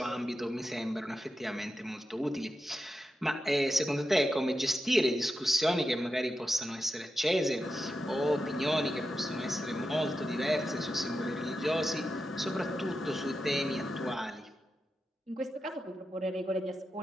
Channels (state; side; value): normal; both; correlation 0.89